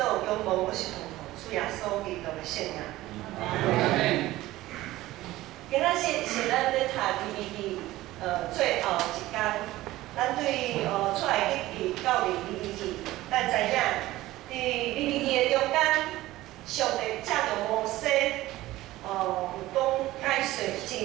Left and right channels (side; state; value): left; quieter; 16.8 dB